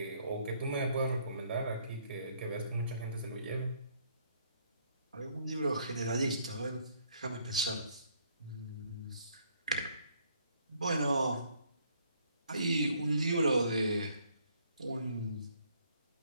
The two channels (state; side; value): inverted; both; correlation -0.66